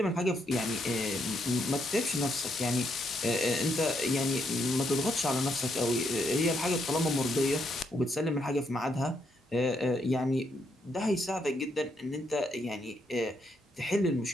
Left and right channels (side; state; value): both; normal; correlation 0.76